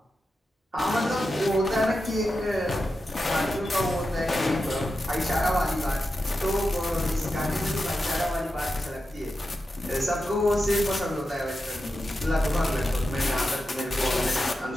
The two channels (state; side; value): normal; both; correlation 0.90